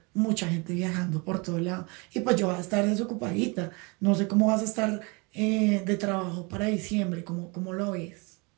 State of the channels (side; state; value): left; quieter; 29.4 dB